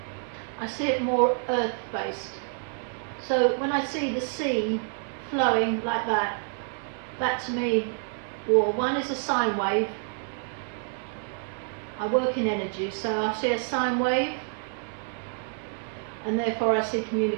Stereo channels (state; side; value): silent; left; 55 dB below the other